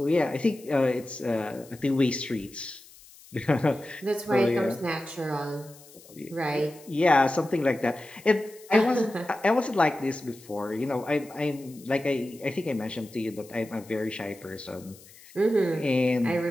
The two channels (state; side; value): noise; left; hiss, 22 dB below the sound